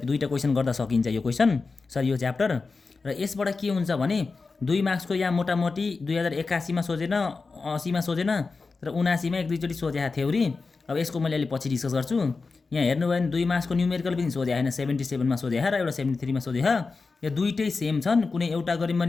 क्वेसन गर्दा सकिन्छ यो क्वेसन सरी यो च्याप्टर। र यसबाट के हुन्छ भने 2 मार्क्सको यहाँ मोटामोटी 2081 मा सोझेन, 80 मा सोझेन र 79 मा एक दुईचोटि सोझेको थ्योरी। अब यसको मैले अलि पछि डिस्कस गर्छु। यहाँ हेर्नुभयो भने 2 मार्क्सको न्युमेरिकल पनि सोझे हैन, 77 मा सोझे र एउटा 73 मा सोझे। यो दुईटै सेम छन्, कुनै एउटा गरिम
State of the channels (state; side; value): quieter; right; 4.2 dB